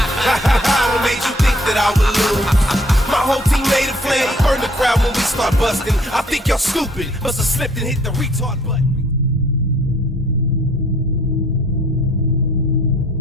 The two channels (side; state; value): both; normal; correlation 0.61